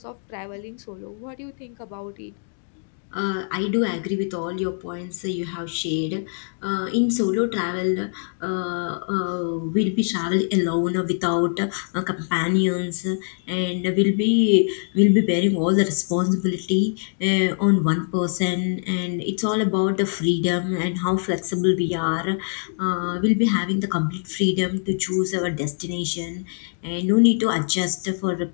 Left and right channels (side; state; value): right; silent; digital silence